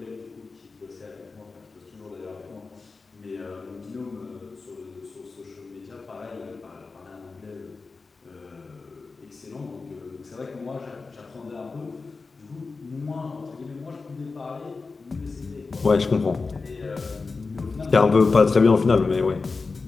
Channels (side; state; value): right; quieter; 4.2 dB